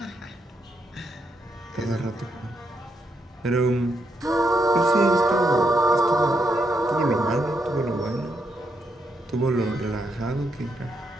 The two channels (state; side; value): normal; both; correlation 0.79